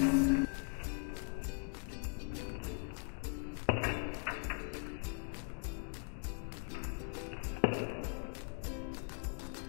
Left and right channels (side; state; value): right; silent; 51 dB below the other